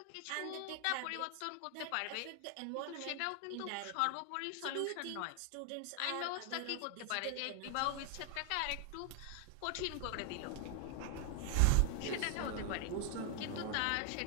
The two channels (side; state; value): both; different; correlation 0.00